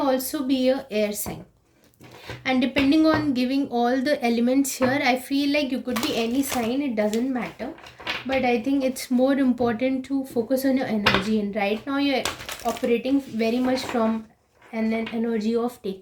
be a air sign. And depending on giving all the elements here, I feel like you could be any sign, it doesn't matter. But I think it's more important to focus on your energy, and right now you're operating very much from an energy of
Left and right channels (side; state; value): both; identical; correlation 1.00